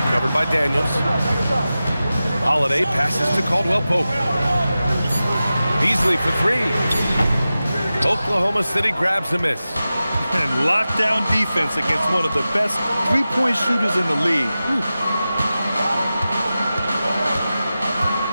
covered by Daniels. Holiday passes to Caldwell Pope. Beasley for 3. Oklahoma City grabs a miss. And lockdown defense against one of the best three-point shooters in the league.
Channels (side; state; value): both; inverted; correlation -0.94